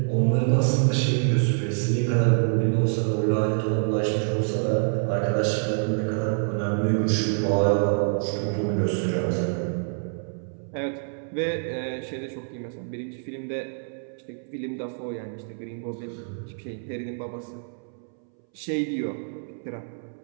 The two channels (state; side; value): silent; left; 61 dB below the other